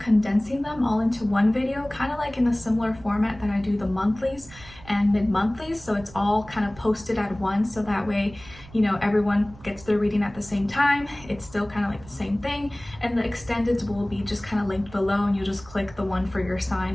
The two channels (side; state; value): right; noise; rumble, 20 dB below the sound